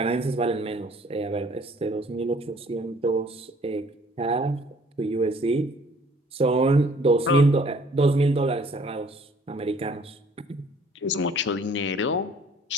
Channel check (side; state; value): both; normal; correlation 0.57